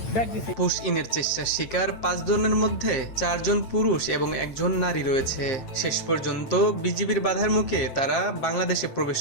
ব্যাক দিছে। পুশ ইনের চেষ্টার শিকার ৫ জনের মধ্যে ৪ জন পুরুষ এবং ১ জন নারী রয়েছে। শেষ পর্যন্ত বিজিবির বাধার মুখে তারা বাংলাদেশে প্রবেশ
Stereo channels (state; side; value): late; right; 8.9 ms